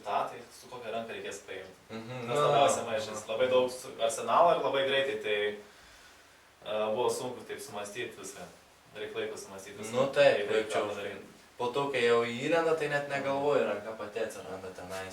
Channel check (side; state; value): both; identical; correlation 1.00